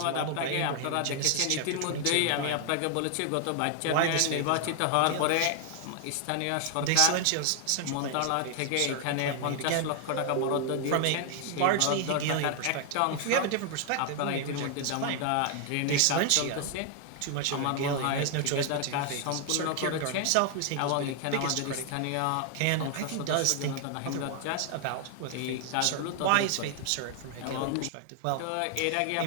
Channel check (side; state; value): both; different; correlation 0.00